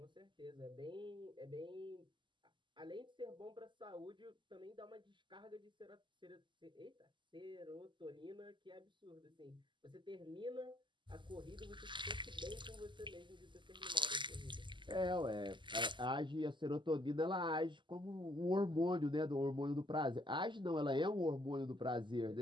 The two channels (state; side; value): late; left; 0.23 ms